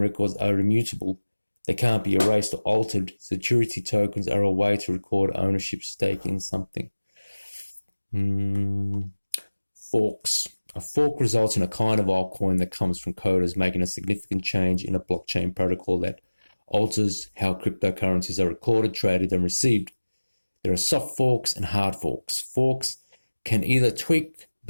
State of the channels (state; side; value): inverted; both; correlation -1.00